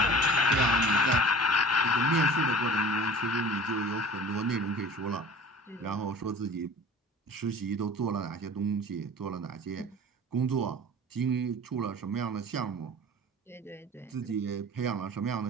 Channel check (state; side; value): normal; both; correlation 0.43